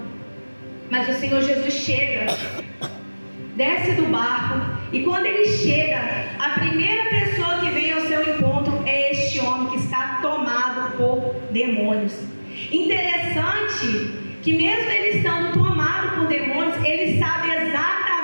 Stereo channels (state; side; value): inverted; both; correlation -1.00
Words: Mas o Senhor Jesus chega, desce do barco, e quando ele chega, a primeira pessoa que vem ao seu encontro é este homem que está tomado por demônios. Interessante que mesmo ele estando tomado por demônios, ele sabe